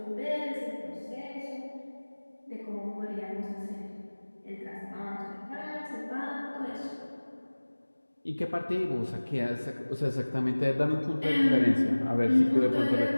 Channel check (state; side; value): inverted; both; correlation -1.00